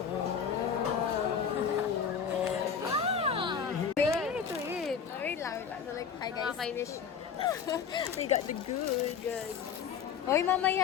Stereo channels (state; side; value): quieter; right; 7.0 dB